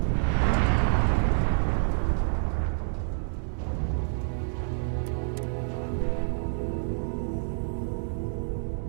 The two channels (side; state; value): left; silent; digital silence